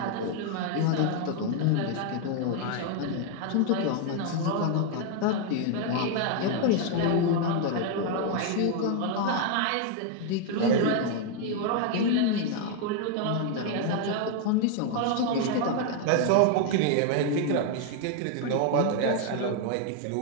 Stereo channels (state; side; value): different; both; correlation 0.00